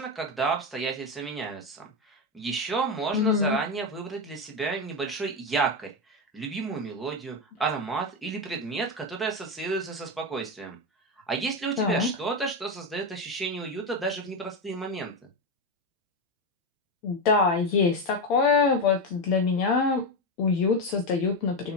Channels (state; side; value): normal; both; correlation 0.12